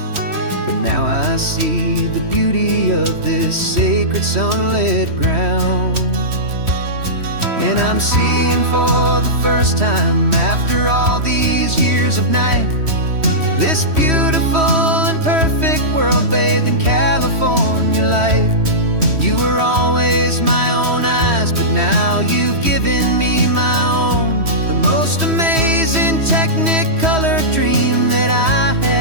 But now I see the beauty of this sacred sunlit ground. And I'm seeing for the first time, after all these years of night, this beautiful and perfect world bathed in California light. You were always my own eyes, but now you've given me my own, the most amazing technicolor dream that I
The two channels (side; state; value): left; late; 3.1 ms